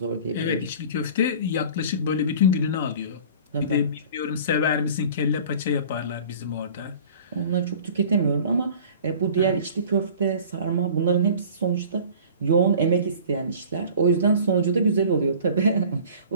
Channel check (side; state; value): both; inverted; correlation -0.44